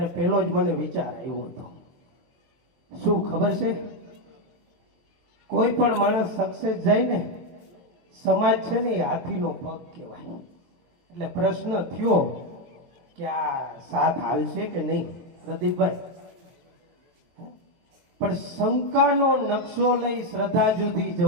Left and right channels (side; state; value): left; late; 23 ms